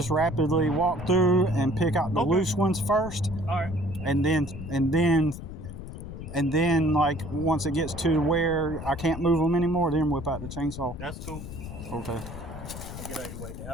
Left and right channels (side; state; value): left; noise; rumble, 10 dB below the sound